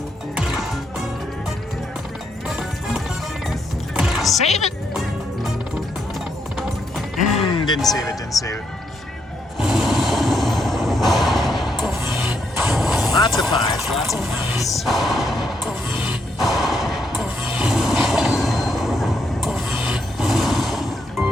Save it. Didn't save it. Didn't save it. Lots of 5s. Lots of 5s.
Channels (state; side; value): normal; both; correlation 0.77